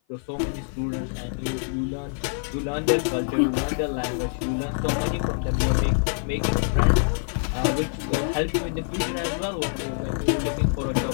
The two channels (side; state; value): right; silent; 55 dB below the other